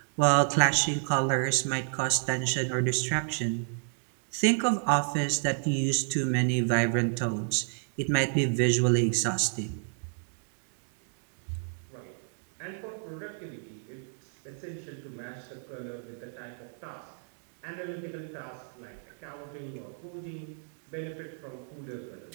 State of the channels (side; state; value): left; silent; digital silence